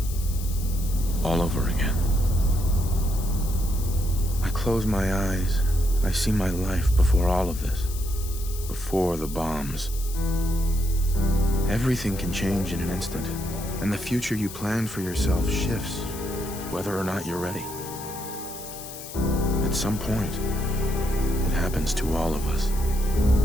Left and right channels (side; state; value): left; noise; hiss, 12 dB below the sound